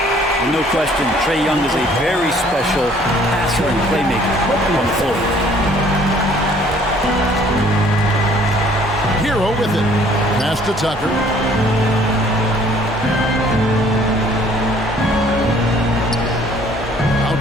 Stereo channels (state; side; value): normal; both; correlation 0.58